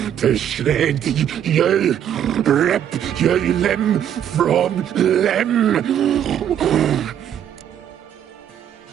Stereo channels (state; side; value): quieter; left; 9.8 dB